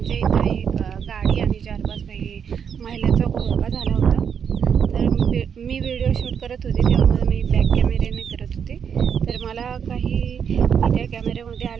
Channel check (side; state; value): left; quieter; 7.4 dB